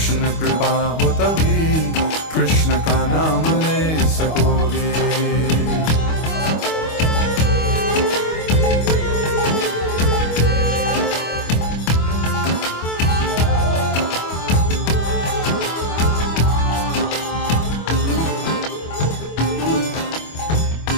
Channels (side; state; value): right; late; 25 ms